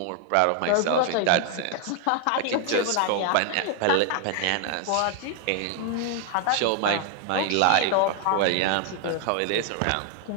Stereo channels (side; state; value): both; different; correlation 0.00